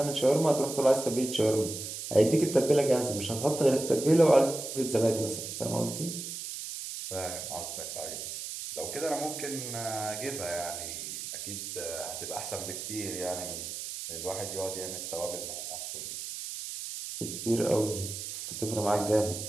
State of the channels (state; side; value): noise; right; hiss, 7 dB below the sound